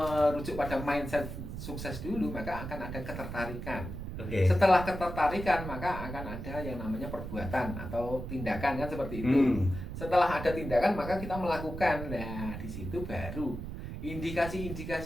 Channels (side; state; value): right; noise; rumble, 7 dB below the sound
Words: pada mindset sukses dulu, maka akan ada ketertarikan. Oke. Setelah ketertarikan, maka akan ada yang namanya perbuatan atau tindakan kan seperti itu. Setelah ada tindakan, maka kita melakukan. Nah, di situ baru